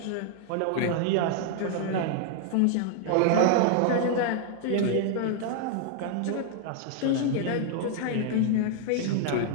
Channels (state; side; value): different; both; correlation 0.00